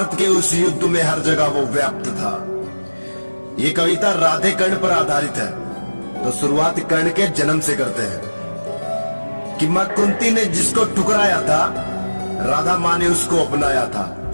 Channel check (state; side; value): inverted; both; correlation -1.00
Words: के उस युद्ध में हर जगह वो व्याप्त था। ये कविता राधे कर्ण पर आधारित है। तो शुरुआत कर्ण के जन्म से करते हैं कि मां कुंती ने जिसको ठुकराया था, राधा मां ने उसको अपनाया था।